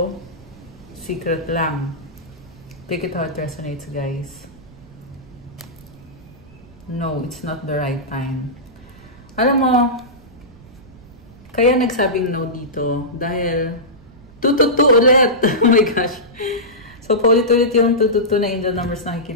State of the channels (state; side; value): noise; right; rumble, 23 dB below the sound